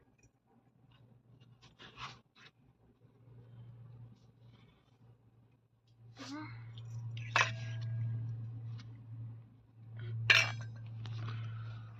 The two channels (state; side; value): identical; both; correlation 1.00